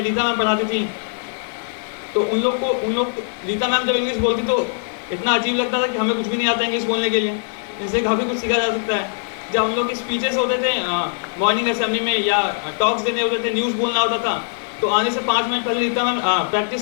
रीता मैम पढ़ाती थी। तो उन लोग रीता मैम जब इंग्लिश बोलती तो इतना अजीब लगता था कि हमें कुछ भी नहीं आता इंग्लिश बोलने के लिए, इनसे काफ़ी कुछ सीखा जा सकता है। जब हम लोग की स्पीचेस होते थे मॉर्निंग असेंबली में या टॉक्स देने होते थे, न्यूज़ बोलना होता था, तो आने से 5 मिनट पहले रीता मैम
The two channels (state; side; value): silent; right; digital silence